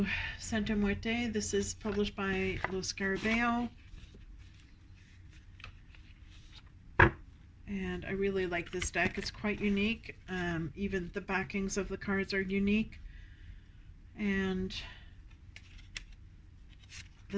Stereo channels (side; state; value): both; identical; correlation 1.00